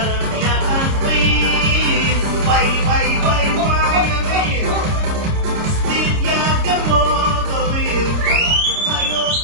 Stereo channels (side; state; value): left; late; 29 ms